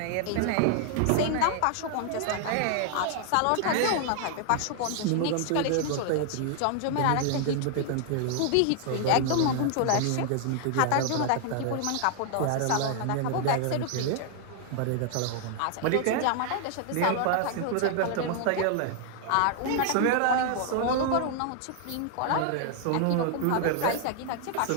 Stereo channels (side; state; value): both; different; correlation 0.00